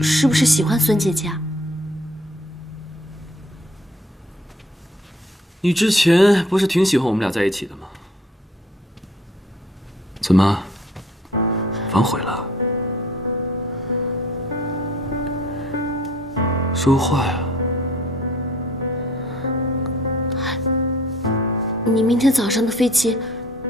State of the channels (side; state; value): both; normal; correlation 0.55